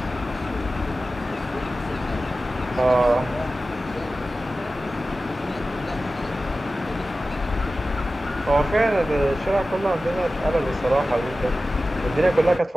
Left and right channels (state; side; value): normal; both; correlation 0.95